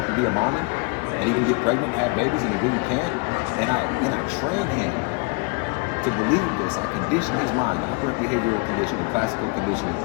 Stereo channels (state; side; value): quieter; right; 30.0 dB